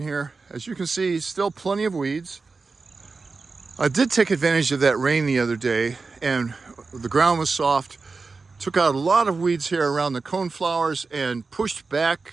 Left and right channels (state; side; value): quieter; left; 4.2 dB